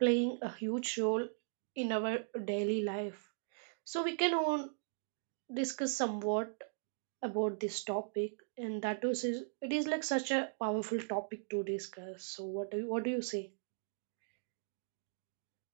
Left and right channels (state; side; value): silent; left; digital silence